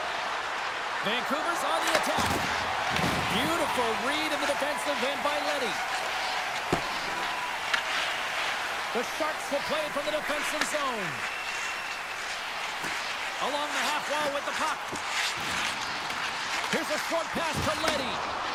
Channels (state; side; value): noise; left; rumble, 26 dB below the sound